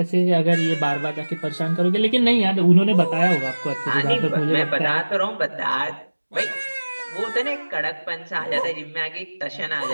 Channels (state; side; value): inverted; both; correlation -1.00